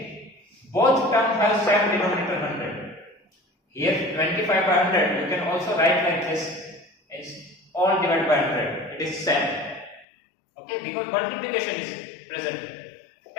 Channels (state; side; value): drops out; right; at 10.1 s